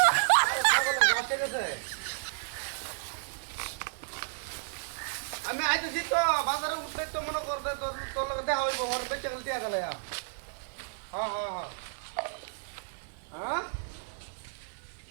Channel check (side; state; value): left; silent; 56 dB below the other